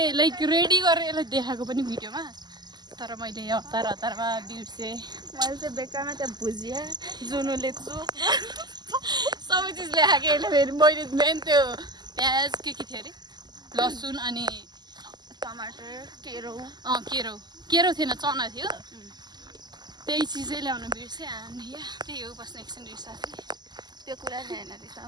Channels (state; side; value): late; left; 0.21 ms